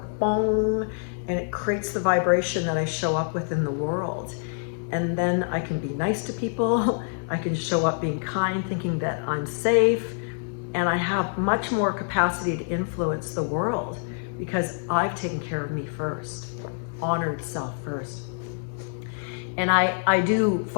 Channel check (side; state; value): right; silent; digital silence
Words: bong, and it creates the vibration that I show up with in the world. And then I can be nice to people. I can show up being kind, thinking that I'm safe, and I have much more capacity to influence the world because I've taken care of me first, honored self first. And I do